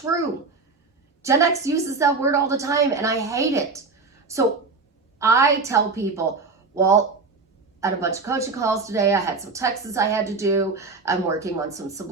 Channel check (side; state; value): left; quieter; 4.2 dB